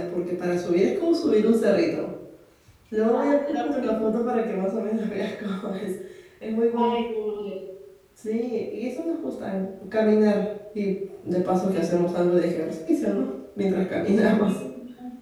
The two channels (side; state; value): both; identical; correlation 1.00